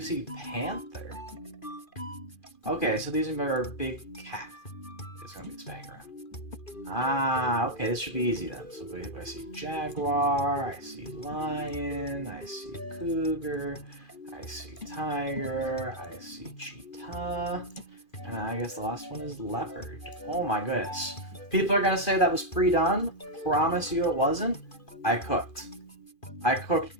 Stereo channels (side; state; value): right; late; 2.4 ms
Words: see panther. Okay, so these are a big cat. It's gonna be spinning around. Okay, this should be easy then. So if I see jaguar, I see lion, I see cougar, I see tiger, I see cheetah, and I guess the last one is leopard. Oh my goodness. People are gonna say that was pre-done. Promise you it wasn't. I cooked. I cooked